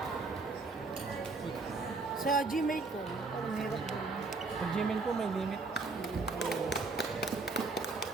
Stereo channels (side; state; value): left; quieter; 3.9 dB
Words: Sa Gmail ko. Parang hirap din. Pag Gmail ko may limit.